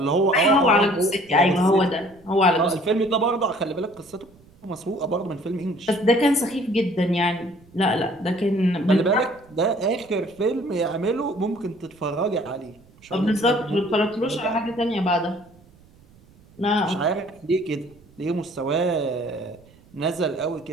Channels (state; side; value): noise; right; rumble, 27 dB below the sound